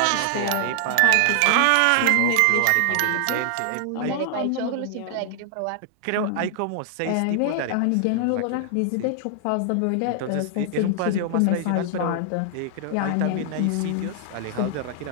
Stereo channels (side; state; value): both; different; correlation 0.00